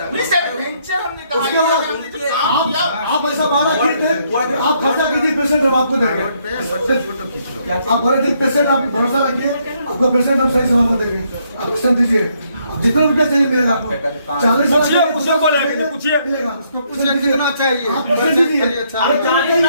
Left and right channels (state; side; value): inverted; both; correlation -0.72